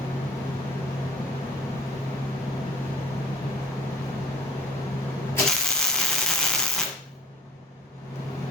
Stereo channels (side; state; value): both; normal; correlation 0.45